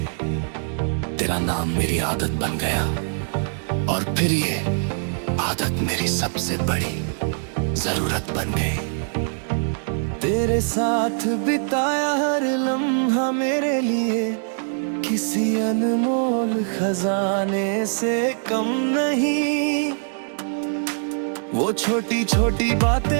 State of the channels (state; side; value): silent; left; digital silence